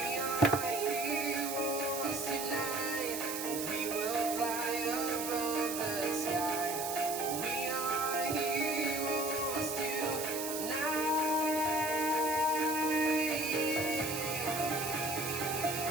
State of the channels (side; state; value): right; noise; hiss, 5 dB below the sound